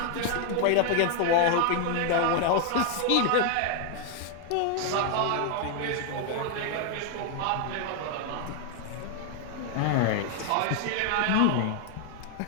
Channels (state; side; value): different; both; correlation 0.00